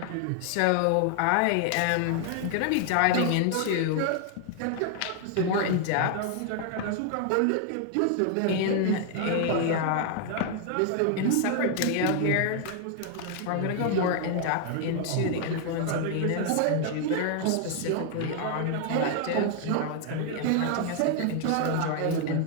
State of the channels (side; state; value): both; different; correlation 0.00